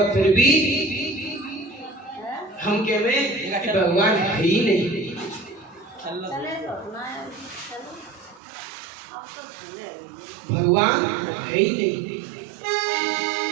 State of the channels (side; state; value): left; drops out; at 8.4 s